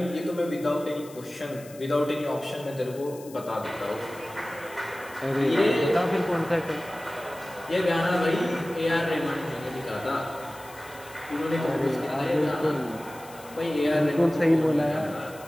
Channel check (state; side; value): noise; left; hiss, 20 dB below the sound